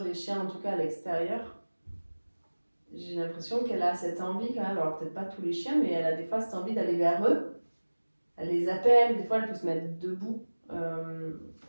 les chiens, en tout cas à l'extérieur, j'ai l'impression qu'elle a cette envie quand même, alors peut-être pas tous les chiens, mais elle a des fois cette envie d'aller vers eux. Elle les appelle, des fois elle peut se mettre debout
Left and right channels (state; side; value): inverted; both; correlation -1.00